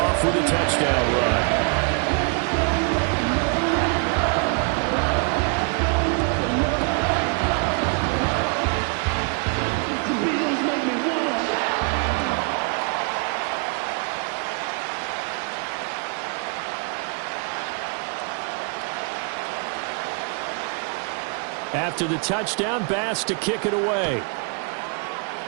with a touchdown run. After the touchdown, Bass to kick it away.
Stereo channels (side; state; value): left; quieter; 39.2 dB